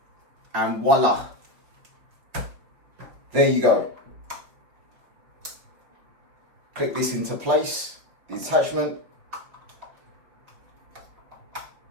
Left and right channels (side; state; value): left; late; 5.7 ms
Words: and voila. There you go. Click this into place, the attachment.